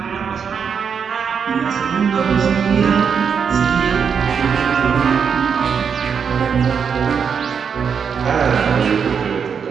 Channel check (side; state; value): left; quieter; 6.7 dB